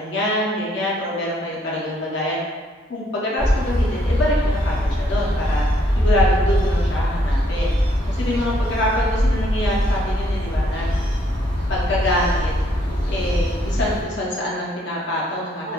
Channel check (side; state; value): both; normal; correlation 0.69